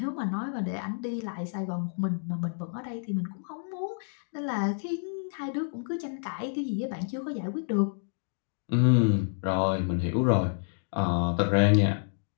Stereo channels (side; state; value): right; silent; digital silence